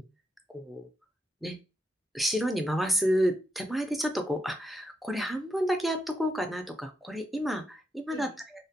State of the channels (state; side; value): normal; both; correlation 0.82